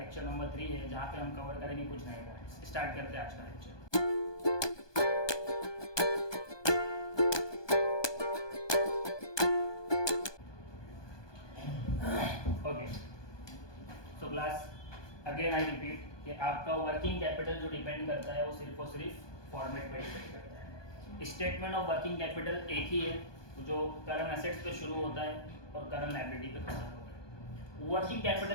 नंबर 3 है, जहाँ पे हम कवर करेंगे कुछ नए पॉइंट्स। स्टार्ट करते हैं आज का lecture. Okay, so class, again I repeat कि आपका वर्किंग कैपिटल जो डिपेंड करता है वो सिर्फ और सिर्फ फॉर्मेट पे डिपेंड करता है। स्टेटमेंट ऑफ वर्किंग कैपिटल एक ही है, जो करंट एसेट्स पे शुरू होता है और करंट लायबिलिटी पे खत्म होता है। वर्किंग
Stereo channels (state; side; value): late; right; 1.2 ms